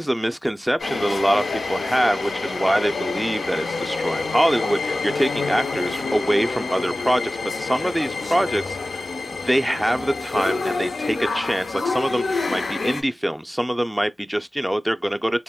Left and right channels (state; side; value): normal; both; correlation 0.96